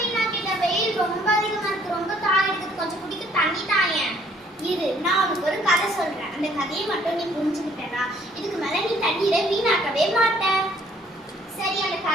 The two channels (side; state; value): both; normal; correlation 0.62